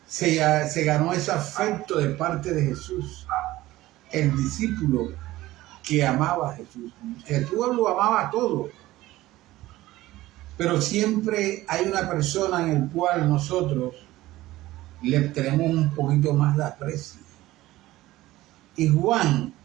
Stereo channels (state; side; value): quieter; left; 16.8 dB